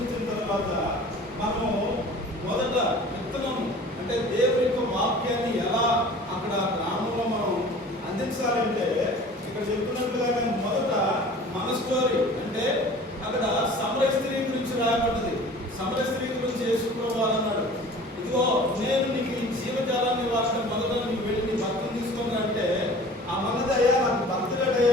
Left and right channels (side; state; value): both; normal; correlation 0.44